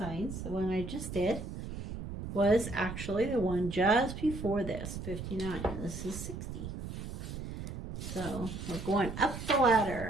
the one I just did, was actually the one just before this, 59. This is 60. So we're going up the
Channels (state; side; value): noise; right; rumble, 8 dB below the sound